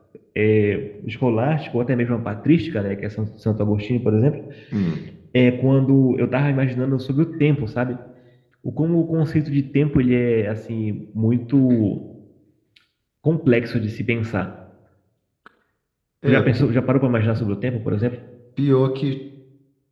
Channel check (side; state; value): both; identical; correlation 1.00